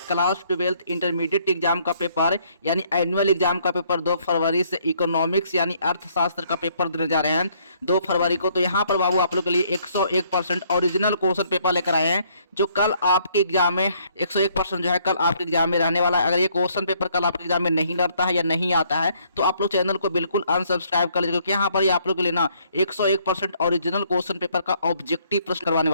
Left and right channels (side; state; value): both; inverted; correlation -0.66